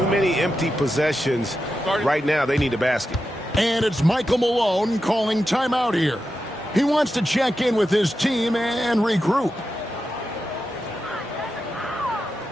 many empty possessions. Right now, they need a basket. And it's Michael Malone calling timeout here. He wants to check in with his team and regroup.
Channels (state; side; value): normal; both; correlation 0.89